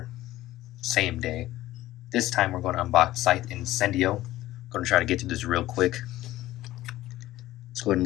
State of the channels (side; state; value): right; quieter; 15.6 dB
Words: same day. This time we're going to unbox Scythe Incendio. I'm going to try to get through this real quick. Let's go ahead and